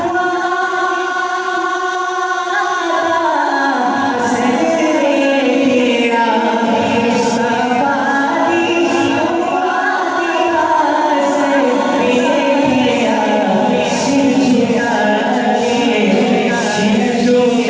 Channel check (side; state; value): both; identical; correlation 1.00